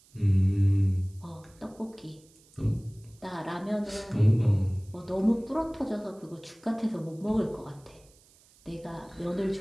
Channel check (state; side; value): noise; right; hiss, 29 dB below the sound